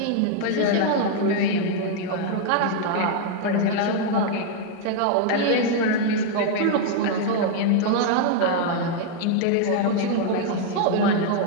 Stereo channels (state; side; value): different; both; correlation 0.00